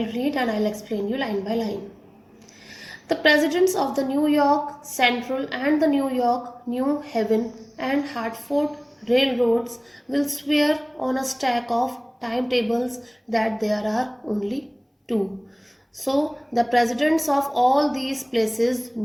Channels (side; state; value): both; identical; correlation 1.00